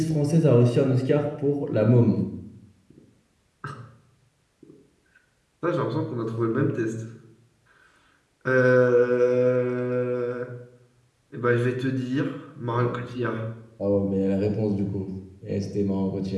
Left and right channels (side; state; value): both; identical; correlation 1.00